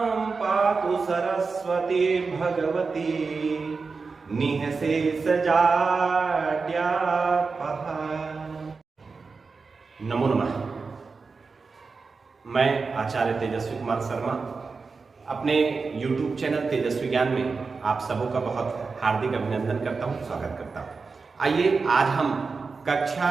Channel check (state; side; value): quieter; left; 4.6 dB